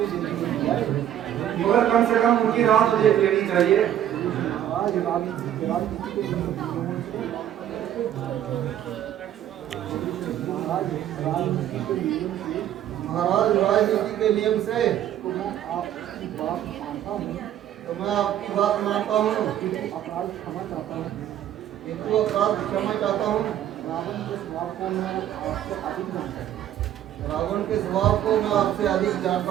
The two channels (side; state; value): left; quieter; 11.2 dB